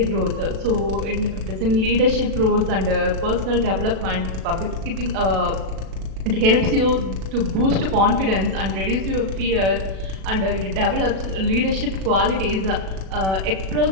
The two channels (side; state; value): left; late; 37 ms